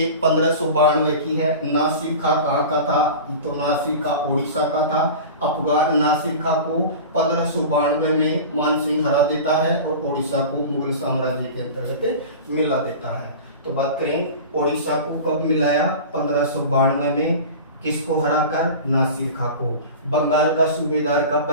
1592 की है। नासिर खां कहाँ का था? तो नासिर खां उड़ीसा का था। अफगान नासिर खां को 1592 में मानसिंह हरा देता है और उड़ीसा को मुगल साम्राज्य के अंतर्गत मिला देता है। तो बात करें उड़ीसा को कब मिलाया? 1592 में। किसको हराकर? नासिर खां को। बंगाल का सूबेदार कब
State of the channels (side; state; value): both; inverted; correlation -0.33